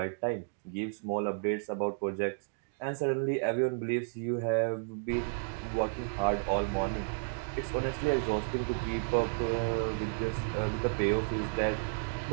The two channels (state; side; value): silent; left; digital silence